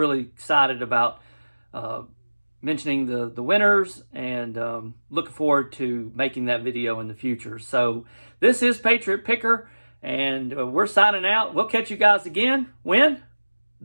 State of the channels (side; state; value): both; inverted; correlation -1.00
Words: excited about mentioning the winners, and looking forward to making that video in the future. So this is Patriot Picker, and we're signing out. We'll catch you guys again when?